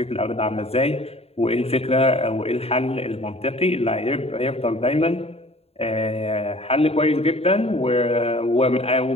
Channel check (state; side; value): late; right; 0.29 ms